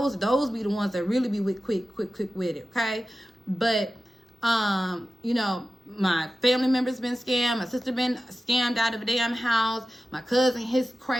be the ones that really be quick with it, okay? But you know, my family member's been scammed. My sister been scammed out of a damn house. My cousin, his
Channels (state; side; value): normal; both; correlation 0.94